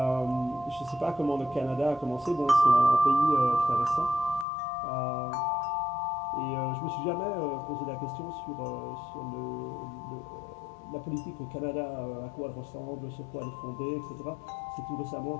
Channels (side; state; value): right; drops out; at 4.5 s